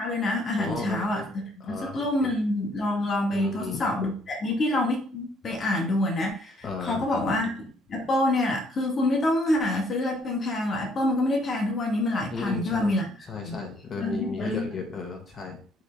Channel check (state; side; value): normal; both; correlation 0.65